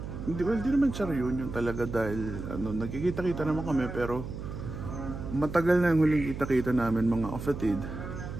Hindi naman siya reunion talaga dahil nagkikita-kita naman kami, pero matagal na yung huling kita-kita namin mga kapatid.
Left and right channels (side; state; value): right; noise; hum, 8 dB below the sound